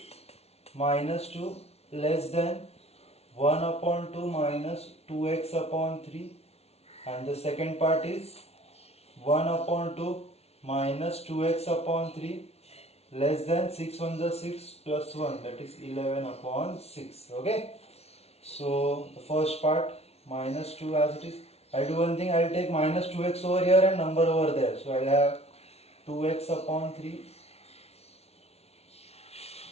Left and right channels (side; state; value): right; late; 0.31 ms